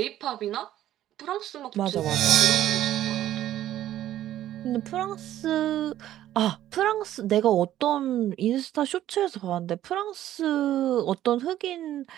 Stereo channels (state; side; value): quieter; left; 12.7 dB